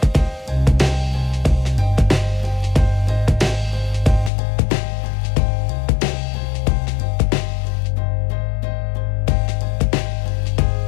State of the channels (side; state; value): right; drops out; at 4.3 s